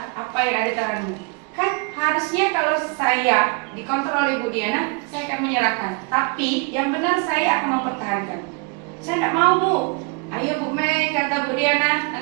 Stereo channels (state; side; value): quieter; left; 30.8 dB